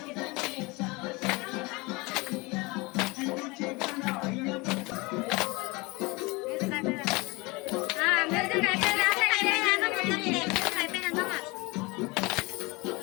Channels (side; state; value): right; quieter; 25.0 dB